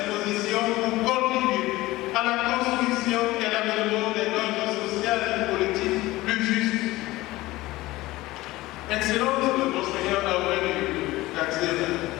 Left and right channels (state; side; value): quieter; right; 18.5 dB